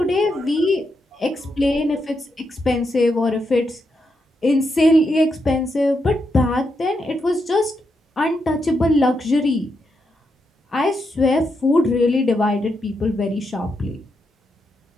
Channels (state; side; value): normal; both; correlation 0.83